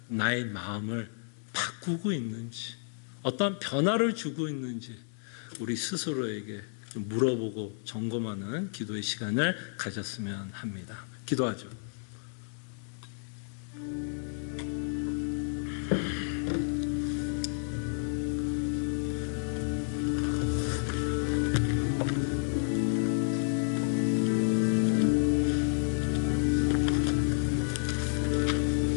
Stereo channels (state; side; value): silent; right; 57 dB below the other